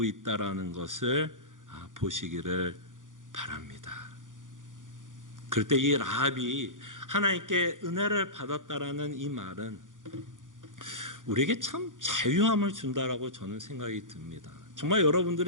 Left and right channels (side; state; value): left; late; 0.88 ms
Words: 있다라는 것을 보시기를 바랍니다. 그럴 때 이 라합이 하나님께 은혜를 받았다라는 이 말은 우리에게 참 자유함을 준다라고 저는 생각이 듭니다. 정말